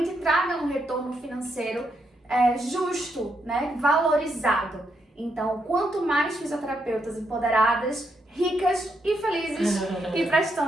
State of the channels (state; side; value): normal; both; correlation 0.79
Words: te traga um retorno financeiro justo, né? Valorizado. Então, quanto mais fisioterapeutas empoderadas, ricas e felizes e